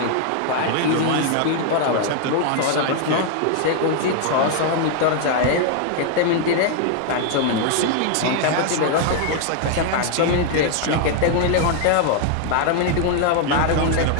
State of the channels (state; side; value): different; both; correlation 0.00